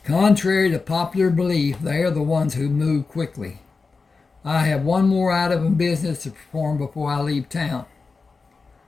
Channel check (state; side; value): quieter; right; 4.3 dB